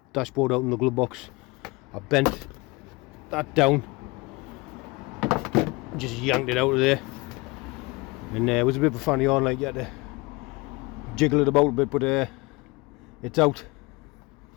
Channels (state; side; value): quieter; right; 24.9 dB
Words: dashboard out in the glove box. I bent that down, just yanked it out of there, and it was a bit of a funny on, like you had to jiggle it about a bit, but it's out.